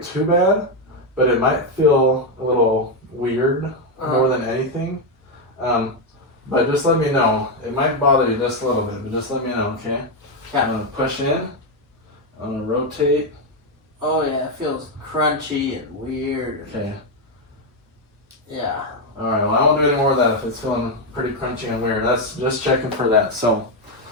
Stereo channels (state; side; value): normal; both; correlation 0.04